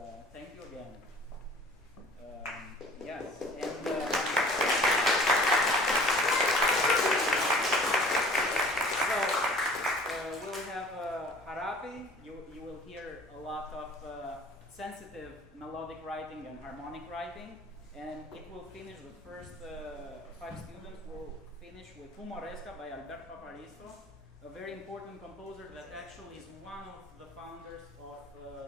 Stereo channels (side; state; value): both; normal; correlation 0.48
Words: thank you again. Yes, and so we'll have Harapi. You will hear a lot of sensitive melodic writing and harmonic writing, and it will finish, the first 5 students will finish with Humoresca by Albert Paparisto, a very important composer that actually is one of the founders of